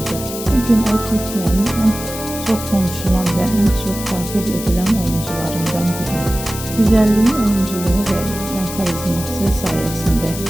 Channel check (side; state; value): left; noise; hiss, 9 dB below the sound